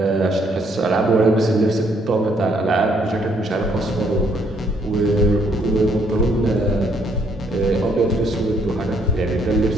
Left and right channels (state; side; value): normal; both; correlation 0.69